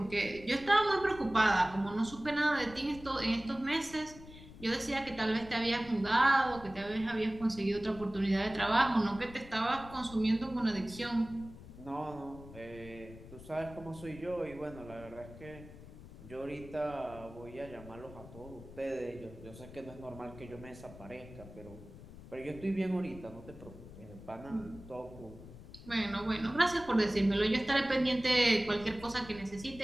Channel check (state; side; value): noise; left; rumble, 17 dB below the sound